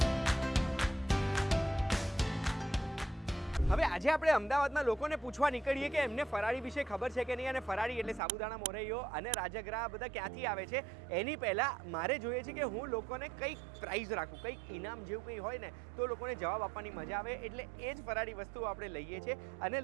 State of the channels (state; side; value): drops out; left; at 8.2 s